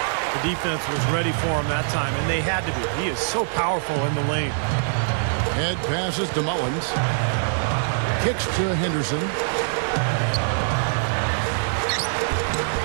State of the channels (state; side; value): silent; left; digital silence